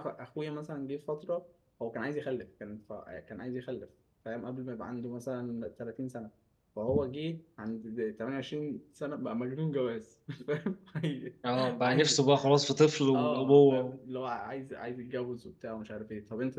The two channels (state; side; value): identical; both; correlation 1.00